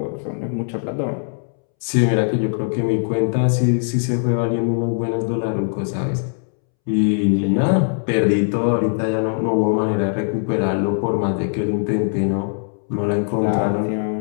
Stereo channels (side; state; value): right; silent; 65 dB below the other